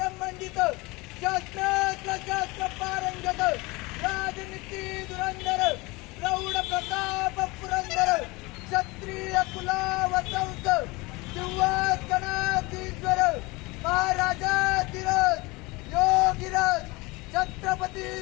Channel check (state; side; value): quieter; right; 24.0 dB